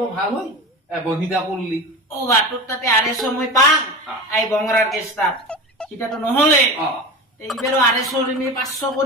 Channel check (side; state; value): both; normal; correlation 0.29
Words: ভাল হয় বহিদা করলি ও বাটুর তাতে আড়াইশো মই পাং আই বংরার কেসটা সেটা তো নহলে এইবারও আড়াইশো নি 500